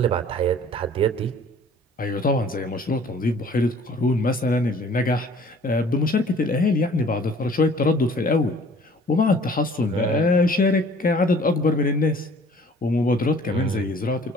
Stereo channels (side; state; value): both; normal; correlation 0.52